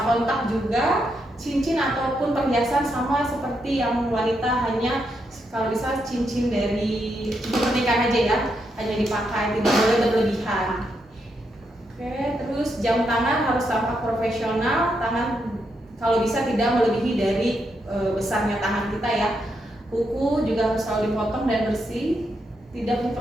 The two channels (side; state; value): both; normal; correlation 0.81